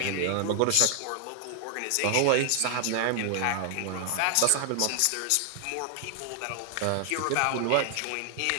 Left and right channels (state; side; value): different; both; correlation 0.00